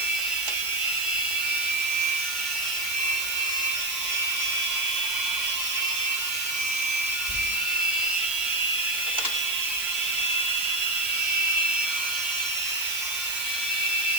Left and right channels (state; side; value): noise; right; hiss, 5 dB below the sound